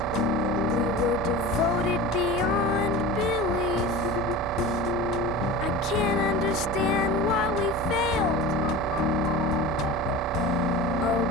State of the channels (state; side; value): normal; both; correlation 0.32